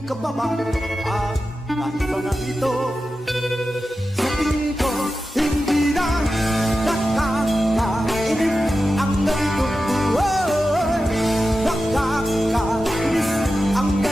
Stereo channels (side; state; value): both; normal; correlation 0.92